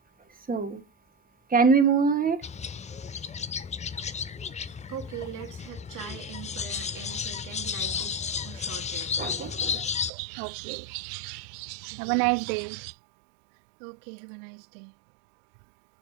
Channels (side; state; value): left; drops out; at 10.1 s